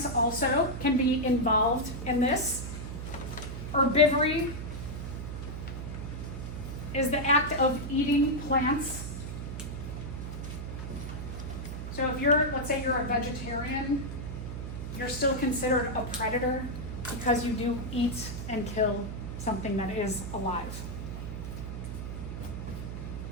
also can be involved in this. Herbivory is the act of eating plants. So if let's say you're a vegetarian, you're still considered a predator because you do eat and kill something that is alive.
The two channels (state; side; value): noise; right; hum, 6 dB below the sound